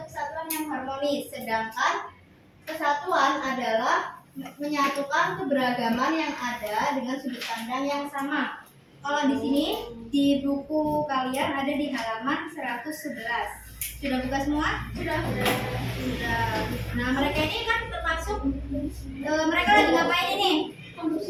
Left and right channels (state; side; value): identical; both; correlation 1.00